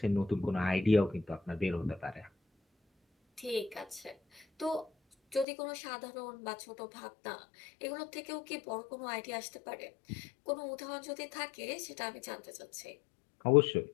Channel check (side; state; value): right; drops out; at 5.5 s